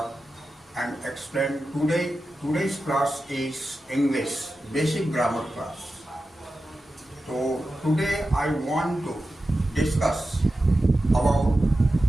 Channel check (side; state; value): both; normal; correlation 0.92